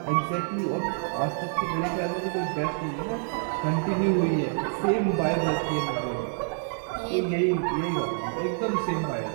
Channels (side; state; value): left; silent; 60 dB below the other